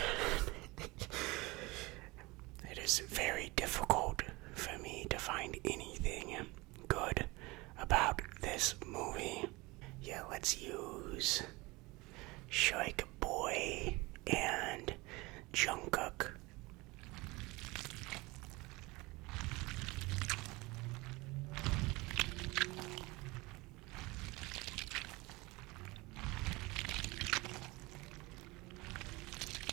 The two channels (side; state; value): left; quieter; 23.1 dB